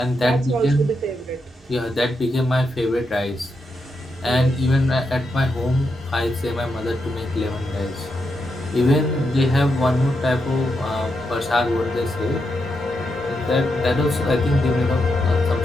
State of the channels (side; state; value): both; normal; correlation 0.84